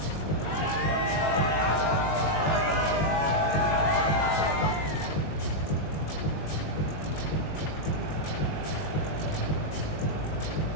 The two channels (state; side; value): late; right; 20 ms